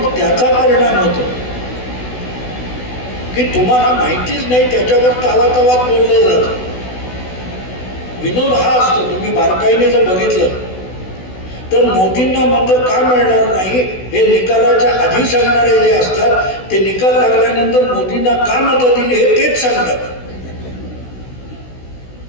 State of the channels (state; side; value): late; right; 16 ms